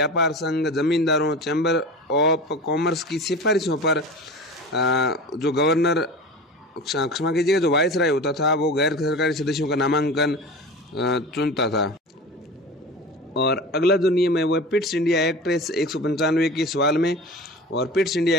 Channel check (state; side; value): normal; both; correlation 0.33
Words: संघ, जमींदारों, चैम्बर ऑफ कॉमर्स की सिफारिशों पर जो गवर्नर, क्षमा कीजिएगा, जो वायसराय होता था वो गैर सरकारी सदस्यों का नामांकन चुनता था। और अगला जो नियम है वो है पिट्स इंडिया एक्ट 195 के सवाल में। और पिट्स